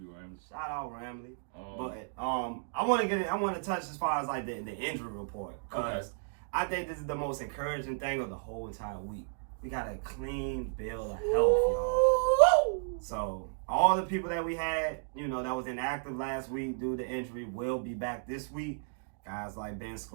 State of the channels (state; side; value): silent; left; digital silence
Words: Ramsey. Shout out Ramley. But I want to touch as far as like the injury report, because I think this is the most encouraging thing of the whole entire week. We got a clean bill of health, y'all. So all the people that we had, you know, that was inactive last week due to injury will be back this week. Guys like Ben